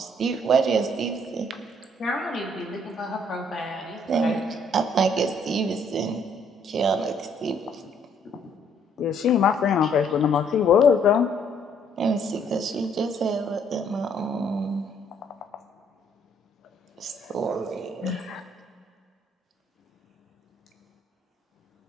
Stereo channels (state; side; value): normal; both; correlation 0.66